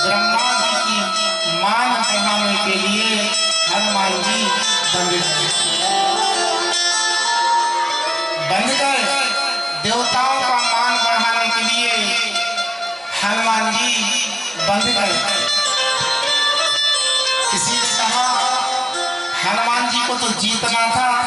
ब्रह्मा जी की मान बढ़ाने के लिए हनुमान जी बंद गए। देवताओं का मान बढ़ाने के लिए हनुमान जी बंद गए। किसी ने कहा हनुमान जी को तो जीतना था,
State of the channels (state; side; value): normal; both; correlation 0.97